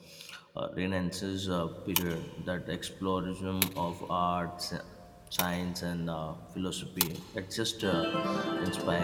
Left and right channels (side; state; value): both; identical; correlation 1.00